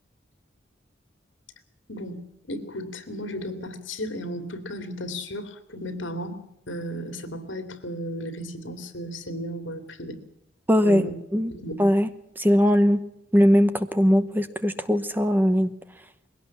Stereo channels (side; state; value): both; normal; correlation 0.90